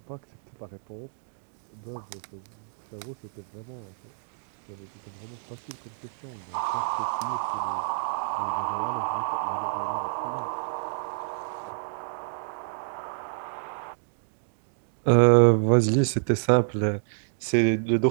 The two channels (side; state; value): left; silent; digital silence